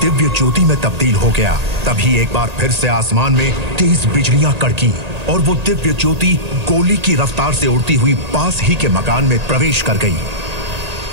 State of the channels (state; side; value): late; left; 1.8 ms